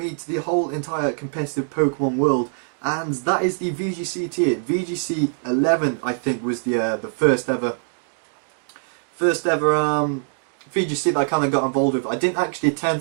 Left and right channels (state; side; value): silent; left; digital silence